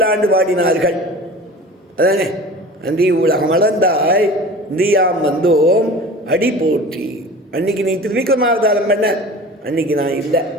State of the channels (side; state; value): both; normal; correlation 0.39